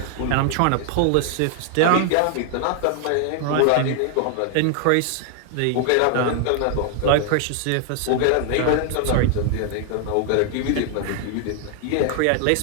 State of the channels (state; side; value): different; both; correlation 0.00